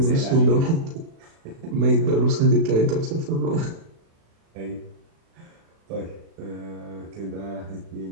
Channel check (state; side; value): late; left; 36 ms